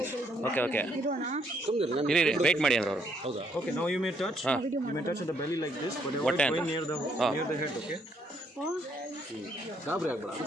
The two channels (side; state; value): both; normal; correlation 0.70